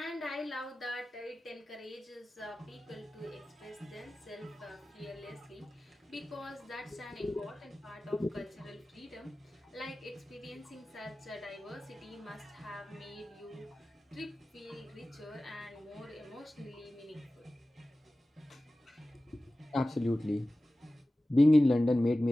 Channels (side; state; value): both; normal; correlation 0.96